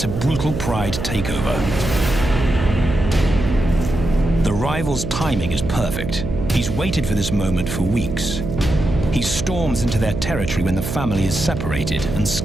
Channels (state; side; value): noise; right; hum, 5 dB below the sound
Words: a brutal pride takeover. The rival's timing is perfect. He's waited for this moment for weeks. He storms into their territory when the family is separated and